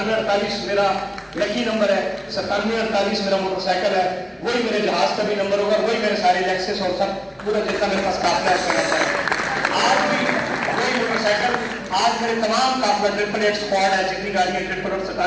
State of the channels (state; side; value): identical; both; correlation 1.00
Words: میرا لکی نمبر ہے, 9748 میرا موٹر سائیکل ہے, وہی میرے جہاز کا بھی نمبر ہوگا, وہی میرے سارے لیکسس اور سب پورا جتنا میرے پاس قافلہ ہے. آج بھی وہی موٹر سائیکل, آج میرے تمام قافلہ 888 اسکواڈ ہے, جتنی گاڑیاں